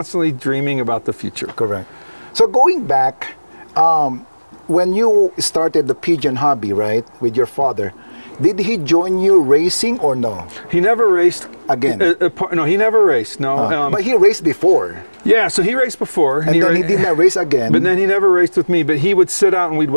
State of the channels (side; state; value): both; inverted; correlation -1.00